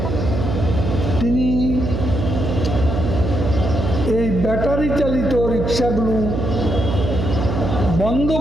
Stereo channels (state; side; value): noise; right; hum, 2 dB below the sound